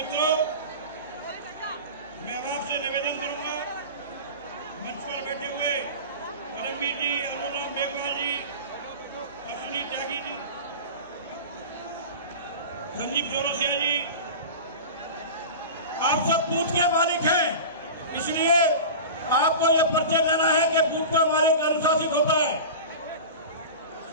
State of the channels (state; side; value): inverted; both; correlation -0.31